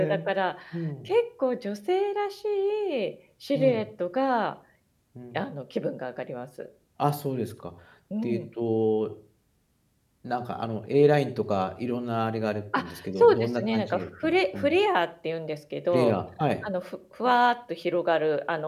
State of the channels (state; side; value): identical; both; correlation 1.00